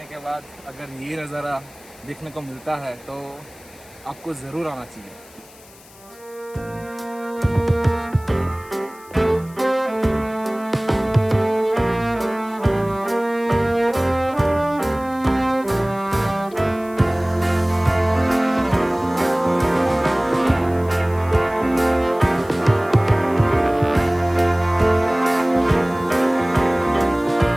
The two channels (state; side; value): noise; left; hiss, 24 dB below the sound